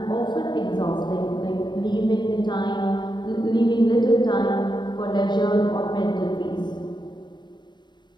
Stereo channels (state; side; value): late; right; 0.22 ms